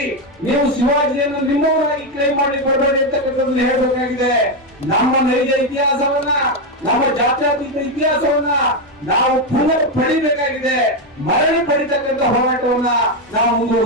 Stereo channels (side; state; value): both; normal; correlation 0.07